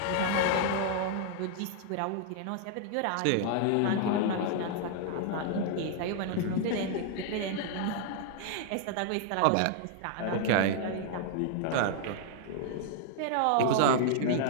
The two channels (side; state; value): both; different; correlation 0.00